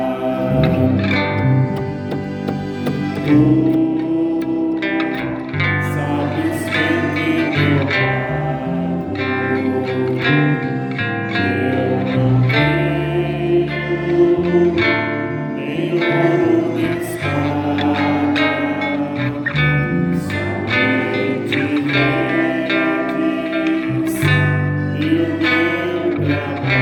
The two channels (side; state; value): both; identical; correlation 1.00